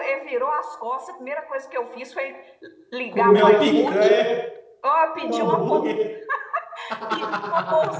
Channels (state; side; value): identical; both; correlation 1.00